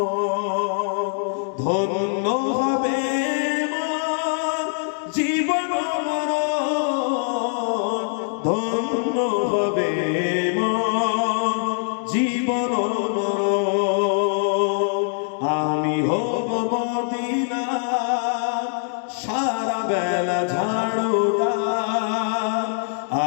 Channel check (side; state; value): right; silent; digital silence